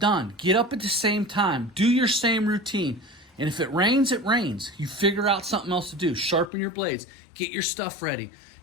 Get up at the same time. Do your same routine. And if it rains, it rains. You figure out something else to do. Sharpen your blades. Get your stuff ready.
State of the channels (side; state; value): right; drops out; at 6.5 s